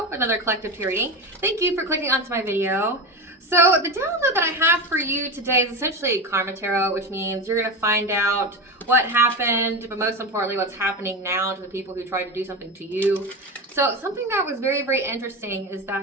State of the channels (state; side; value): normal; both; correlation 0.22